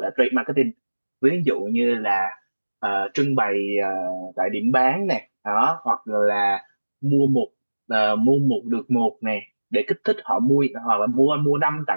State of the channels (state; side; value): inverted; both; correlation -1.00